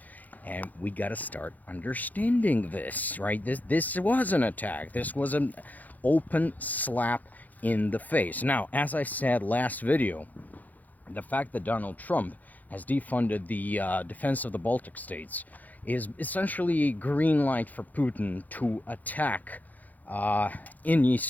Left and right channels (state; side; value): late; right; 0.081 ms